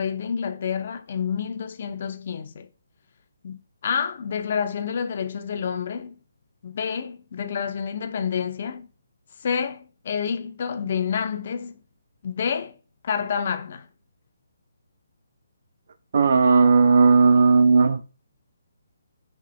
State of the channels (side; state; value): both; inverted; correlation -0.83